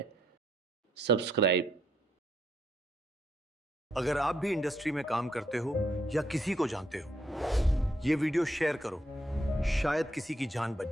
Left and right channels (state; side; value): normal; both; correlation 0.75